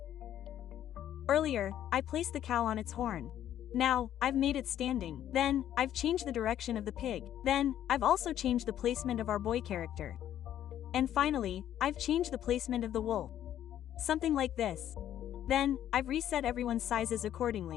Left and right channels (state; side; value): quieter; right; 11.2 dB